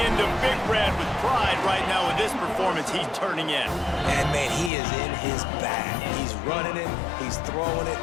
into Big Red with pride right now with this performance he's turning in. And, man, he is in his bag. He's running it. He's throwing it.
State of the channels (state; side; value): drops out; right; at 4.7 s